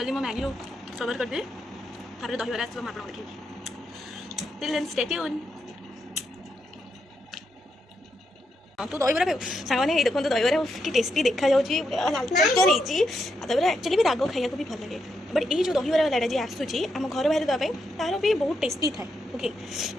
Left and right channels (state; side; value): normal; both; correlation 0.82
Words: मैं मैगी कवर कर दे तापर दहीबार आस आप देखिए टिल देन स्टे ट्यून तू दहीबार खाऊ सांग मैंने देखो दहीबार कि टेस्टी देखा जाऊँगी लाल चटर दहीबार एक्चुअली भी राग खाया भी भल लगे बट ये जो दहीबार वाला जी आसूची आम घर बाहर देवाई तार भी बहुत टेस्टी थाए ओके